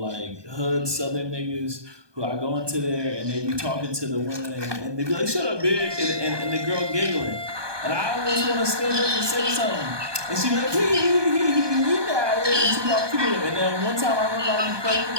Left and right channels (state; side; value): late; left; 1.2 ms